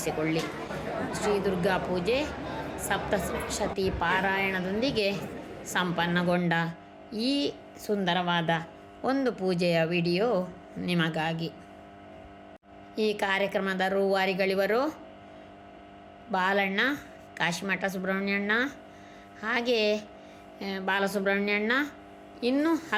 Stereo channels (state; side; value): identical; both; correlation 1.00